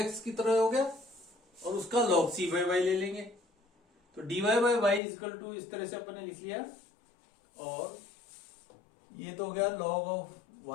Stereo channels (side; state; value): right; drops out; at 5.0 s